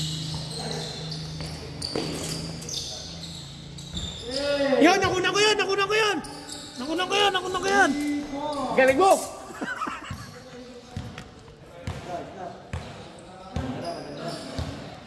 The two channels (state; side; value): identical; both; correlation 1.00